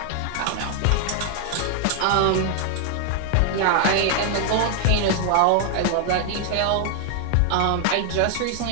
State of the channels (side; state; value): both; different; correlation 0.00